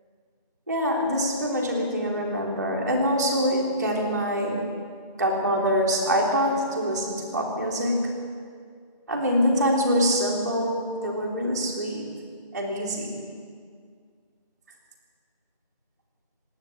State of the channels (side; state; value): both; inverted; correlation -0.37